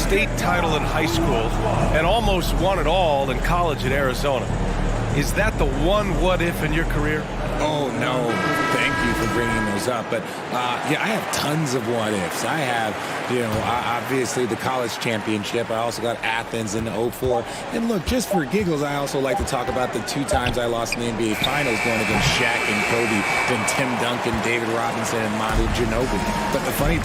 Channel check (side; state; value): both; identical; correlation 1.00